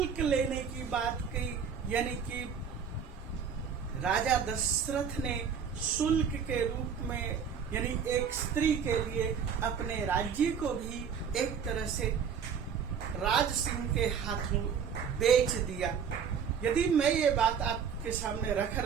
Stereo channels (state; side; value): quieter; left; 7.0 dB